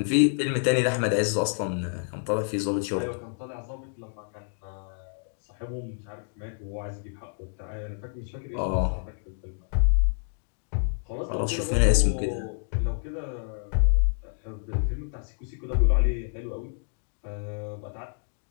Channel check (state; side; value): silent; right; digital silence